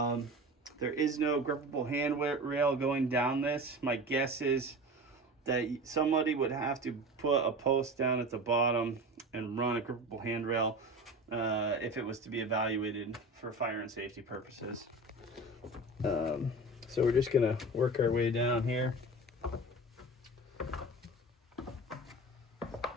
is no grippable handrail going down this. My guess is that somebody would have to put a post down at the bottom and run a grippable handrail if it was to be evaluated for fire and safety purposes. So we're just gonna work our way down here. All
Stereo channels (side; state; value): both; normal; correlation 0.33